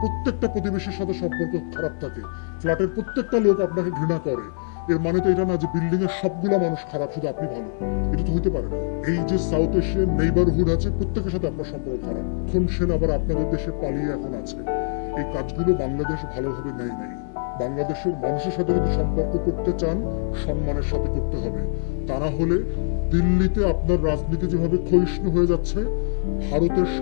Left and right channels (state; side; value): silent; right; 63 dB below the other